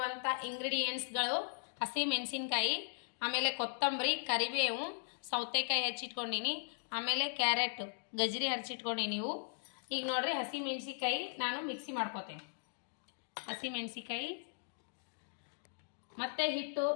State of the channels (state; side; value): silent; right; digital silence